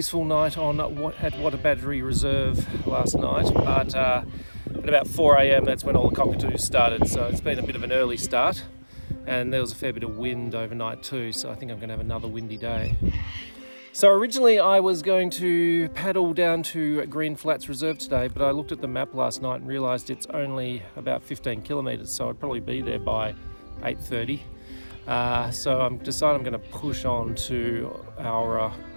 night at Wagga Wagga Reserve last night, but at about 4 a.m. that's when all the cockatoos started, so it's been a bit of an early start. and there was a fair bit of wind overnight too, so I think I'm going to have another windy day. So originally I was going to paddle down to Green Flats Reserve today, but I looked at the map last night and realised it's only about 15 kilometres, so I'd probably be there by 8:30. So I'm decided I'm going to push on to our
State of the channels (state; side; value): inverted; both; correlation -1.00